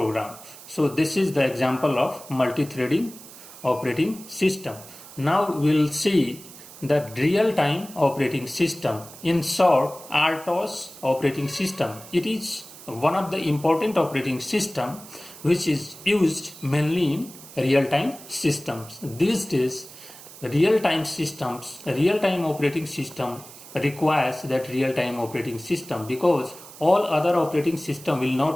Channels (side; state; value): right; noise; hiss, 17 dB below the sound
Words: So this is the example of multi-threading operating system. Now we will see the real-time operating system, in short RTOS operating system. It is one of the important operating system which is used mainly in real-time systems. These days real-time systems, real-time operating system requires that real-time operating system, because all other operating system will